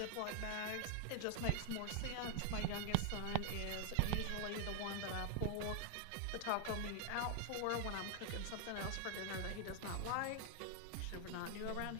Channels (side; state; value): both; different; correlation 0.00